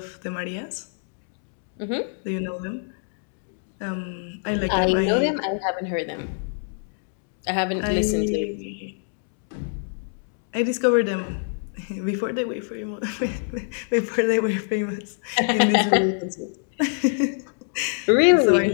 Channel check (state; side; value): silent; right; 62 dB below the other